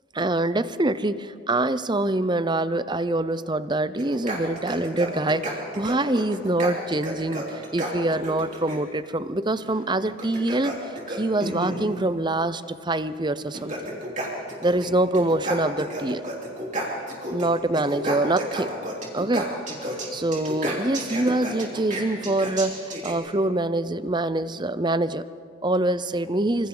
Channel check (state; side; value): normal; both; correlation 0.55